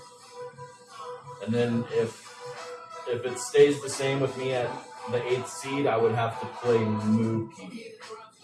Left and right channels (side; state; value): both; identical; correlation 1.00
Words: And then if it stays the same with me at the 8th seed, I would have to play Mookie.